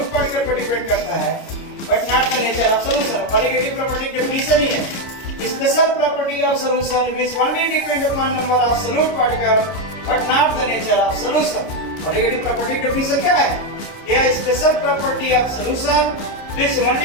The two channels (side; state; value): right; late; 30 ms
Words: particle पर डिपेंड करता है, but not the nature of solution. Colligative property definition ही है. Special property of solution which only depend upon number of solute particle but not the nature of solution. Colligative property definition क्या है? यह special property of solution which